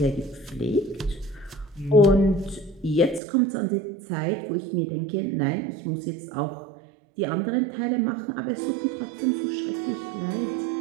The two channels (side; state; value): left; drops out; at 3.2 s